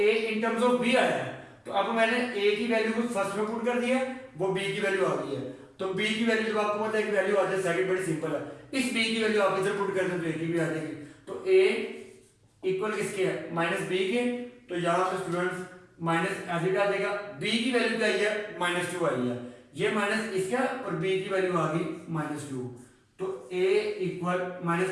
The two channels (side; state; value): both; identical; correlation 1.00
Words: in terms of b आया है, तो अब मैंने a की वैल्यू को फर्स्ट में पुट कर दिया, वो b की वैल्यू आ गई है। तो b की वैल्यू जब आपको पता है कि वैल्यू आ जाए सेकंड, बड़ी सिंपल है, इस b की वैल्यू आप इधर पुट कर दें तो a की भी आ जाएगी। तो a इक्वल किसके है, माइनस b के। तो यहाँ पे स्टूडेंट्स माइनस एज आ जाएगा, b की वैल्यू क्या आई है, -2 आई है, ये माइनस इसका और b की वैल्यू आ गई -2। तो a इक्वल